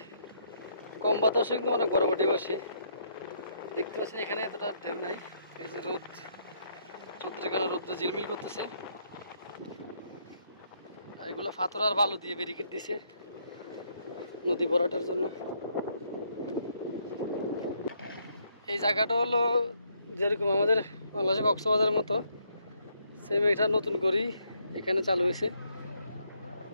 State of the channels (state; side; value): inverted; both; correlation -0.72